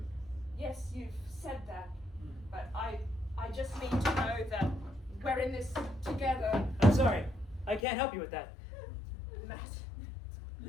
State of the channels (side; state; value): right; drops out; at 7.9 s